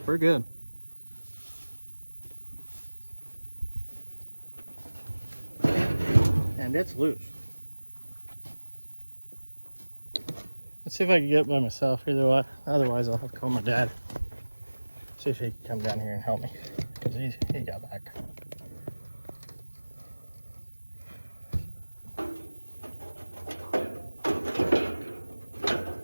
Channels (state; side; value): inverted; both; correlation -1.00